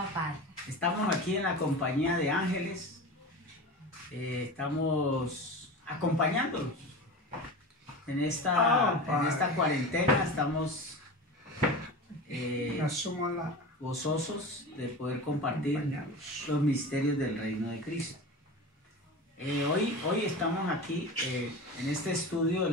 Padre. Estamos aquí en la compañía de ángeles, estamos acompañándolos en esta cuarentena, estamos asumo la gozosos de poder compartir acompañados. los misterios del reino de Cristo. Hoy estamos aquí en este estudio de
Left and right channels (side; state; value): both; normal; correlation 0.30